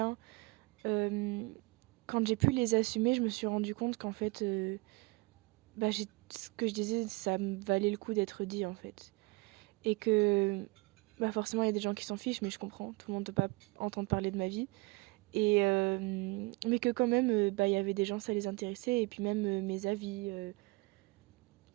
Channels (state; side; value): quieter; left; 25.1 dB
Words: Quand j'ai pu les assumer, je me suis rendu compte qu'en fait, ce que je disais, ça me valait le coup d'être dit en fait. Et que forcément, il y a des gens qui s'en fichent, mais je comprends, tout le monde ne peut pas entendre parler de ma vie. Mais que quand même, il y avait des gens, ça les intéressait, et puis même mes avis